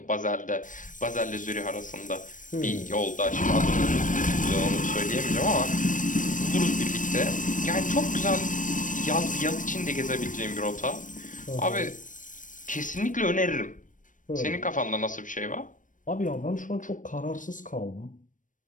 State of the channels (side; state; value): right; late; 0.38 ms